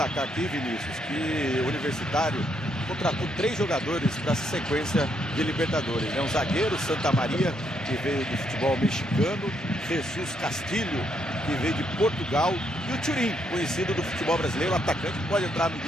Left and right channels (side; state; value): both; normal; correlation 0.75